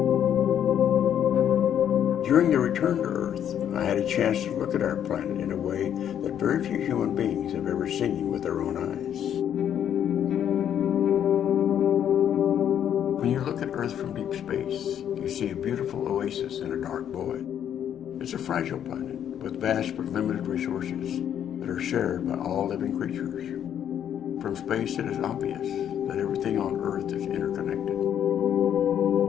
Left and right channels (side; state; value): right; quieter; 9.7 dB